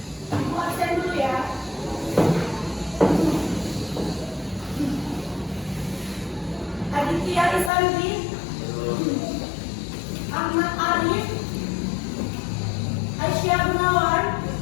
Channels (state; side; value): drops out; right; at 7.7 s